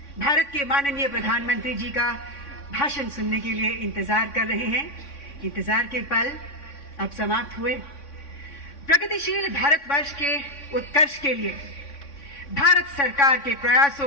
भारत के माननीय प्रधानमंत्री जी का भाषण सुनने के लिए इंतजार कर रहे हैं। इंतजार के पल अब समाप्त हुए। प्रगतिशील भारतवर्ष के उत्कर्ष के लिए भारत सरकार के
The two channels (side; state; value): right; late; 3.5 ms